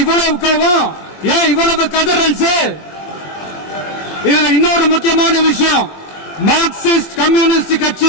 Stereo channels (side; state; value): right; late; 21 ms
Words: இவ்வளவு கோபம்? ஏன் இவ்வளவு கதறல்? இதுல இன்னொரு முக்கியமான விஷயம், மார்க்சிஸ்ட் கம்யூனிஸ்ட்